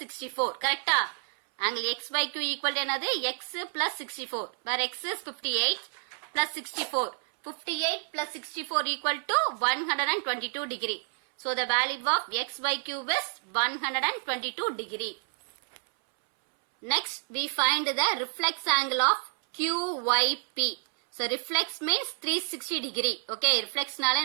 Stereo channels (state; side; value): silent; left; 58 dB below the other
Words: 64. கரெக்டா? angle XYQ equal to என்னது? X plus 64. where X is 58 plus 64. 58 plus 64 equal to 122 degree. so the value of XYQ is 122 degree. Next we find the reflex angle of QYP. so reflex means 360 degree. okay. reflex நாலே